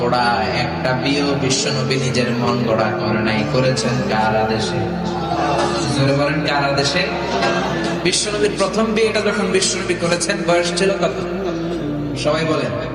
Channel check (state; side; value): identical; both; correlation 1.00